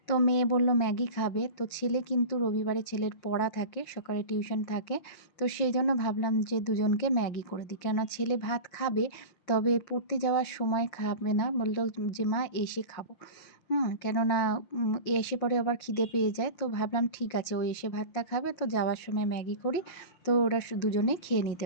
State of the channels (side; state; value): right; late; 5.7 ms